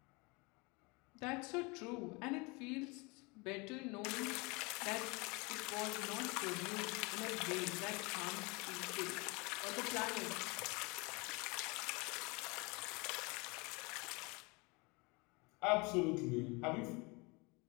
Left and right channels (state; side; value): quieter; right; 27.6 dB